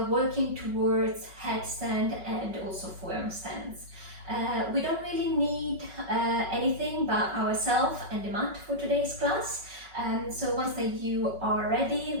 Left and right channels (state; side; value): late; left; 5.3 ms